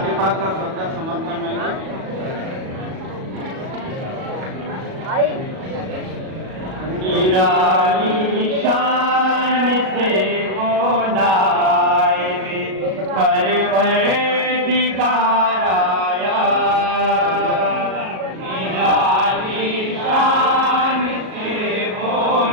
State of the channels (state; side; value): late; left; 37 ms